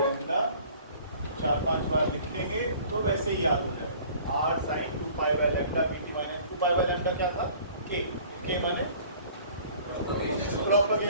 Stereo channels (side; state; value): both; inverted; correlation -0.50